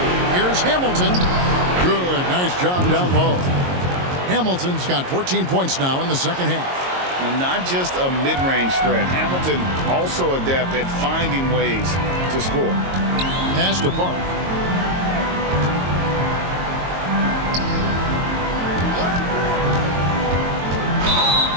Here's Hamilton. Good, nice job down low. Hamilton's got 14 points now in the second half. Well, not just a mid-range threat. Hamilton also adept at finding ways to score. Pass to Park.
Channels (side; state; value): left; late; 22 ms